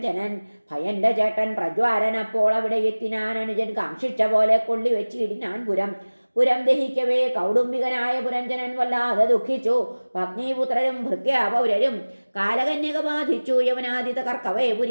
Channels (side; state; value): both; inverted; correlation -1.00